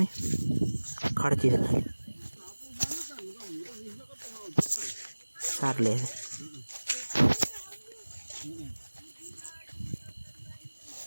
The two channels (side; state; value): both; inverted; correlation -1.00